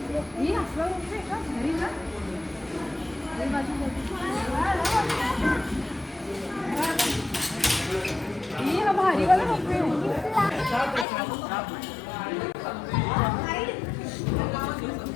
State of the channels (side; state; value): right; drops out; at 11.1 s